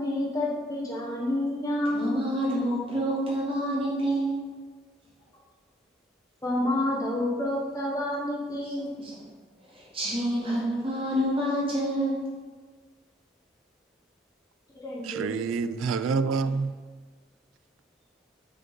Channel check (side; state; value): both; normal; correlation 0.63